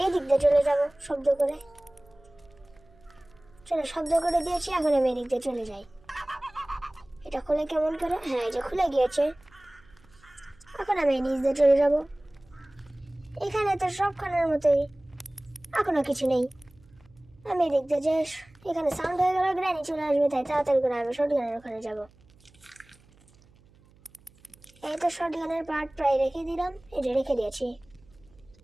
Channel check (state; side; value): noise; right; hum, 29 dB below the sound